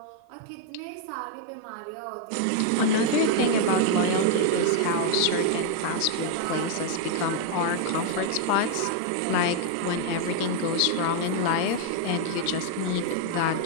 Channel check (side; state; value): both; different; correlation 0.00